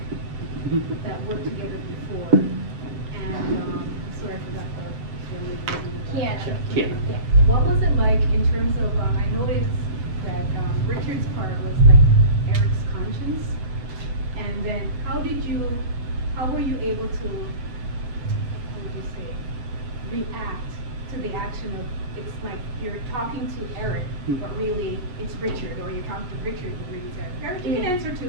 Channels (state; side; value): late; left; 8.3 ms